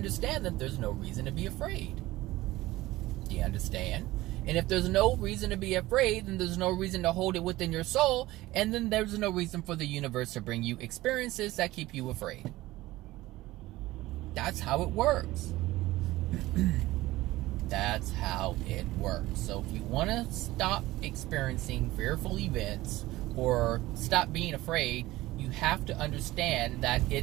that there's no reason to be afraid. Do you understand? And if there's no reason to be afraid, then there's no reason to hold it within your soul, and then there's no reason for the universe to bring you experiences that keep you afraid. That's how it works. That's how it works. So if you want to stop experiencing fearful events or stop being afraid, you have to understand that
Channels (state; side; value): quieter; left; 17.7 dB